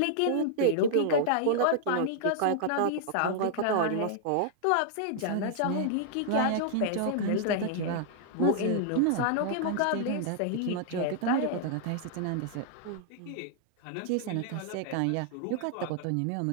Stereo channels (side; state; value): both; different; correlation -0.01